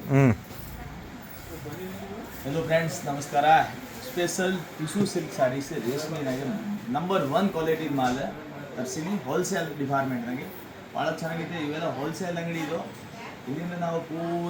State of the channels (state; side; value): identical; both; correlation 1.00